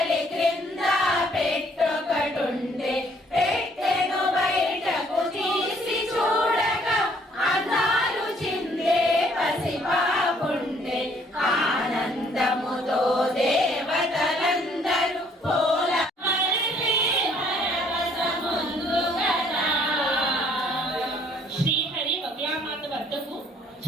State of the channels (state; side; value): normal; both; correlation 0.63